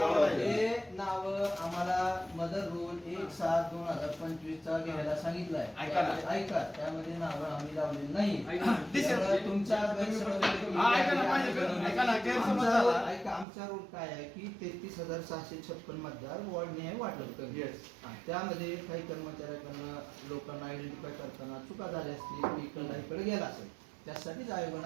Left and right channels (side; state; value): left; drops out; at 13.5 s